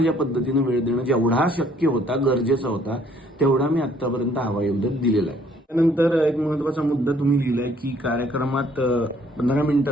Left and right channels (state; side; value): normal; both; correlation 0.62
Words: पद्धतीनं वेळ देणं जेवढा शक्य होता, गरजेचा होता, तेवढा मी आतापर्यंत हवाईउद्योग दिलेला आहे. त्यानंतर एक महत्वाचा मुद्दा तुम्ही लिहिलाय की कार्यक्रमात 15